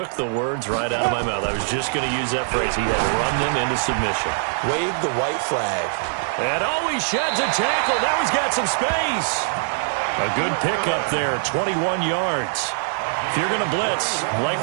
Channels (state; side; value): silent; left; 64 dB below the other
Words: the words right out of my mouth. I was just going to use that phrase. He had run them into submission. Wave the white flag. And he sheds a tackle. Now he's got some space. A good pickup there, 21 yards. If you're going to blitz,